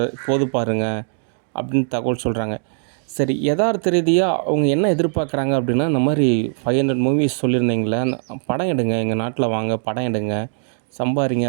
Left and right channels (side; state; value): left; silent; 65 dB below the other